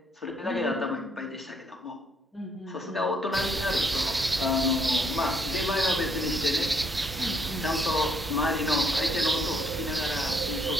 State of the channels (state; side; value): normal; both; correlation 0.69